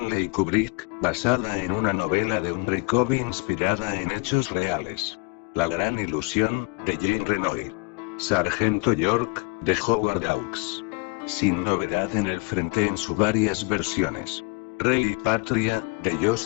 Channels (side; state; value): right; quieter; 31.0 dB